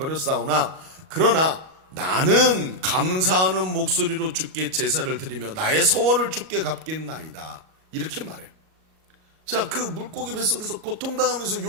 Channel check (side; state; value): left; late; 38 ms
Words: 그러나 나는 감사하는 목소리로 주께 제사를 드리며 나의 소원을 주께 갚겠나이다. 이렇게 말해요. 자, 그 물고기 뱃속에서 고통당하면서